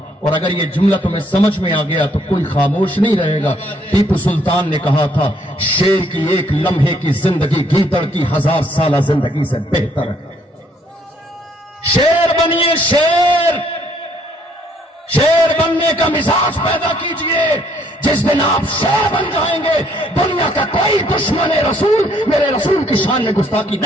और अगर ये जुमला तुम्हें समझ में आ गया तो कोई खामोश नहीं रहेगा। टीपू सुल्तान ने कहा था, शेर की एक लम्हे की जिंदगी गीदड़ की 1000 साल जिंदगी से बेहतर है। शेर बनिए, शेर। शेर बनने का मिजाज पैदा कीजिए। जिस दिन आप शेर बन जाएंगे, दुनिया का कोई दुश्मन रसूल मेरे रसूल की शान में गुस्ताखी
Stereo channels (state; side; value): normal; both; correlation 0.67